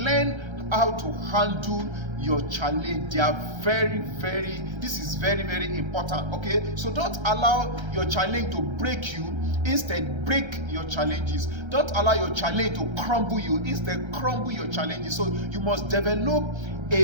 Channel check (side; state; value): left; late; 1.3 ms